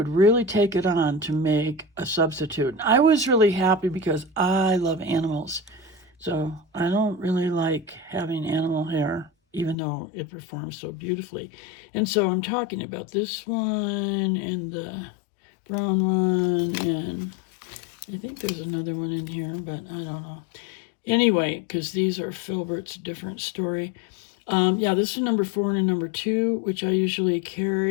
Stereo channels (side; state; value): right; drops out; at 9.8 s